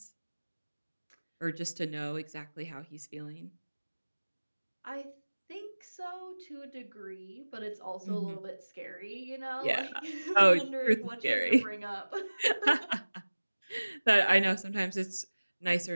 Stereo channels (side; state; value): both; inverted; correlation -1.00